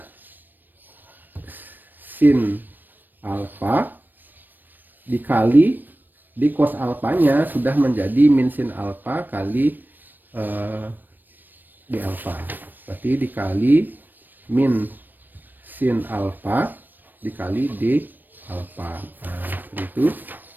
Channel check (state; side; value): late; left; 0.091 ms